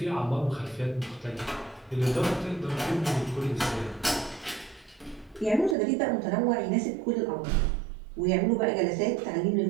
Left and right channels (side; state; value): left; drops out; at 5.8 s